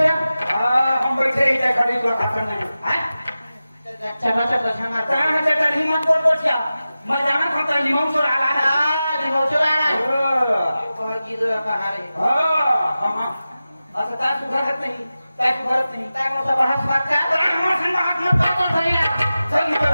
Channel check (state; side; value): inverted; both; correlation -0.94